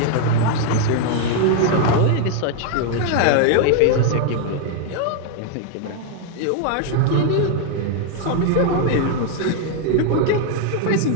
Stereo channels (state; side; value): different; both; correlation 0.01